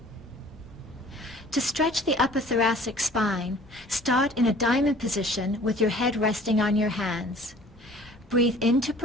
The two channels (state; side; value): normal; both; correlation 0.50